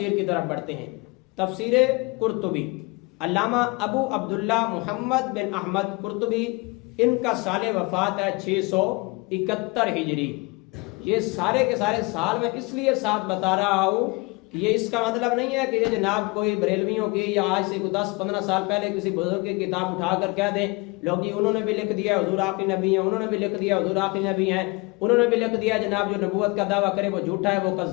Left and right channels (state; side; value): quieter; right; 26.6 dB